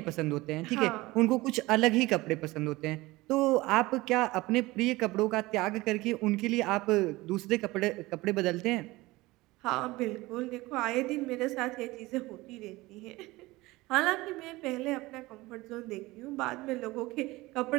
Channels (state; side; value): quieter; left; 20.3 dB